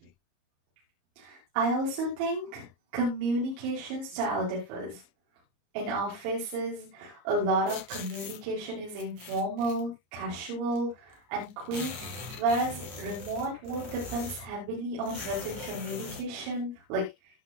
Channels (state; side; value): late; left; 33 ms